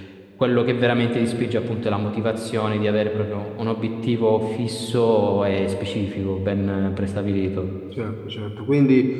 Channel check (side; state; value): both; identical; correlation 1.00